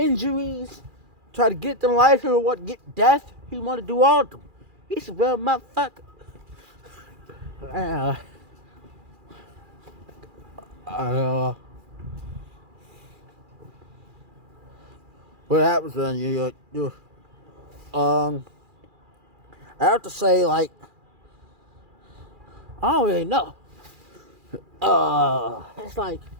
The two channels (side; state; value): left; late; 2.4 ms